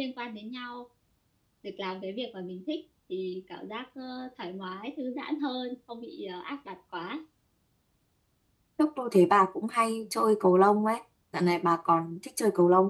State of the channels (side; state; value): both; identical; correlation 1.00